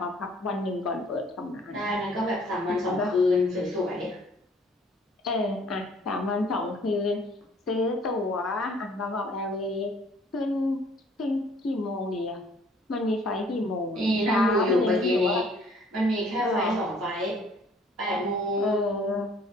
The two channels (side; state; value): both; normal; correlation 0.57